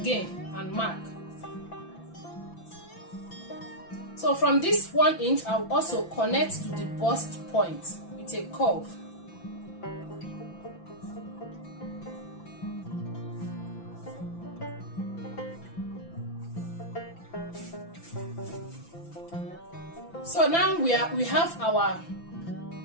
and mark. So So from this 1 inch, I'll also connect to the bust point with a curve. So now we have our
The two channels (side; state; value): right; late; 5.9 ms